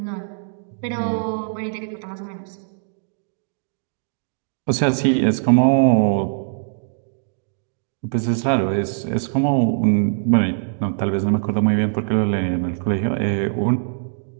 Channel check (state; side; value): silent; left; digital silence